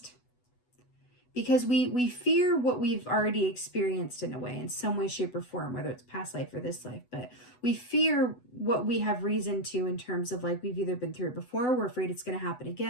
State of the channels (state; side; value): late; right; 8.1 ms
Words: Because we fear what we've already experienced in a way, in some way, shape, or form, whether it's past life or this life. But we fear what we have reason to in terms of like we've either been through it before, we're afraid it's going to happen